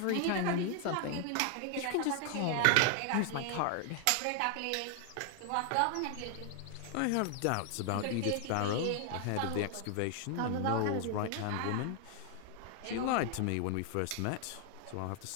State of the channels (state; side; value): different; both; correlation 0.00